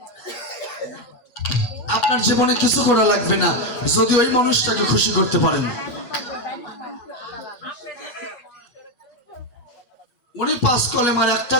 আপনার জীবনে কিছু করা লাগবে না যদি ওই মানুষটাকে খুশি করতে পারেন। উনি 5 কলেমার একটা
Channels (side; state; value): right; late; 8.3 ms